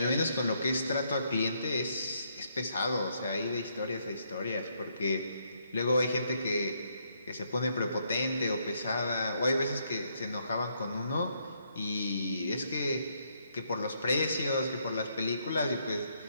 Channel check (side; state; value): both; inverted; correlation -0.74